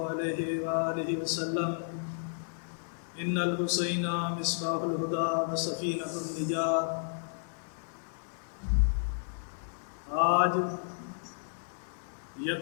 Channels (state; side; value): silent; right; 56 dB below the other